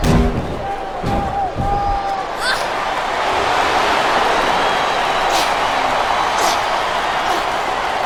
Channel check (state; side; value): identical; both; correlation 1.00